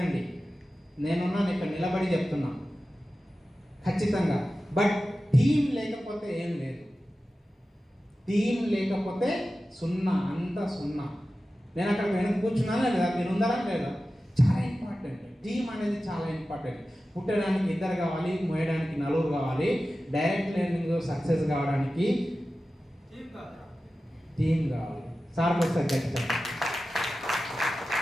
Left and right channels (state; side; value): normal; both; correlation 0.94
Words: నేనున్నాను ఇక్కడ నిలబడి చెప్తున్నా ఖచ్చితంగా. బట్ టీం లేకపోతే ఏం లేదు. టీం లేకపోతే సున్నా, అంతా సున్నా. నేను అక్కడ వెనక కూర్చున్నానా లేదా, మీరు ఉన్నారా లేదా? చాలా ఇంపార్టెంట్. టీం అనేది చాలా ఇంపార్టెంట్. పుట్టడానికి 2 కావాలి, మోయడానికి 4 కావాలి. డైరెక్ట్ లెర్నింగ్ సక్సెస్ కావడానికి టీం కావాలి. సార్ ఒకసారి చెప్తాను,